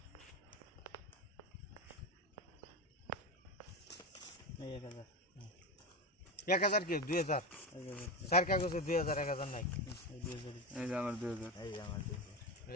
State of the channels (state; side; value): normal; both; correlation 0.18